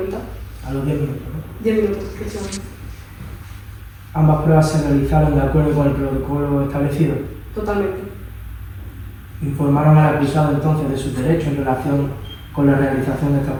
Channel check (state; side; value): identical; both; correlation 1.00